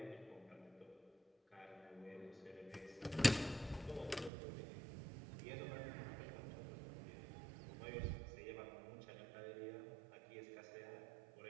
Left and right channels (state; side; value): drops out; left; at 4.3 s